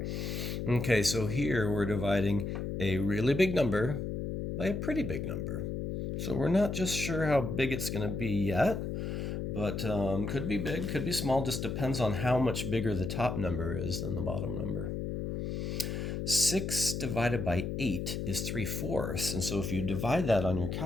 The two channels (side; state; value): left; noise; hum, 3 dB below the sound